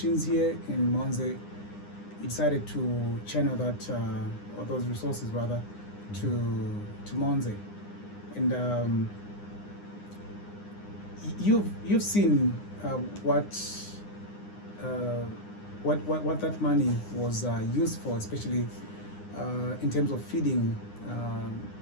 here in Monze, you decided to channel that, or those resources rather, to Monze. And you've seen what that money was used for, especially in terms of feeding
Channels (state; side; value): late; right; 9.8 ms